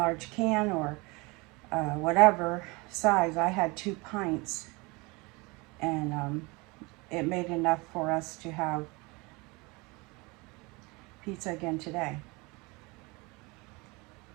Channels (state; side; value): quieter; left; 26.1 dB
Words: can or whatever size, I had 2 pints, and it made enough for us to have pizza again today.